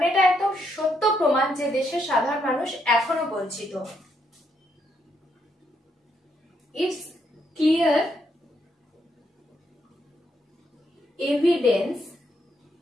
এটা একদম সত্য প্রমাণ যে দেশের সাধারণ মানুষ এখনো বঞ্চিত। It's clear evidence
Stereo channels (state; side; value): normal; both; correlation 0.76